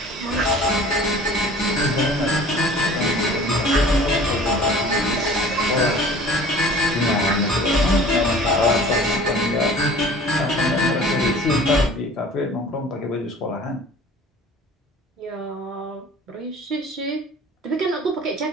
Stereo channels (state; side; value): normal; both; correlation 0.46